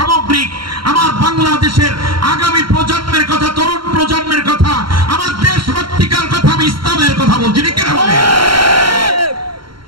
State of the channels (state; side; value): late; left; 0.73 ms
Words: আমার বাংলাদেশের আগামী প্রজন্মের কথা, তরুণ প্রজন্মের কথা, আমার দেশভক্তিকার কথা, আমি ইসলামের কথা বলছি।